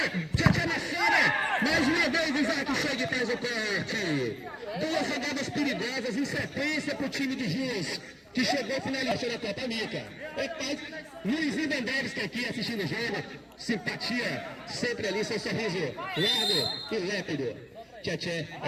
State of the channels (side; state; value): both; identical; correlation 1.00